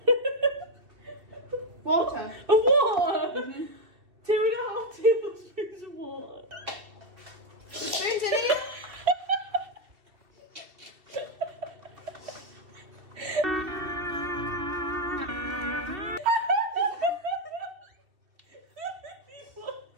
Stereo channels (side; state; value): left; late; 2.7 ms